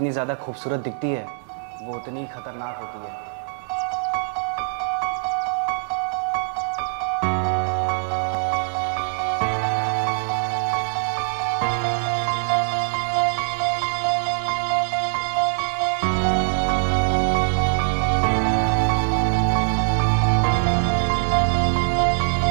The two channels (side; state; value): left; silent; digital silence